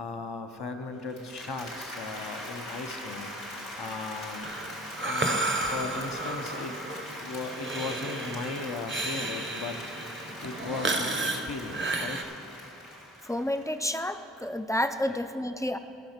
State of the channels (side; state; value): both; normal; correlation 0.48